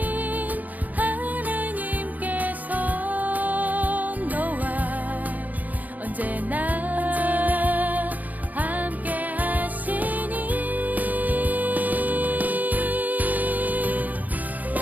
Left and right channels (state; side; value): late; left; 0.080 ms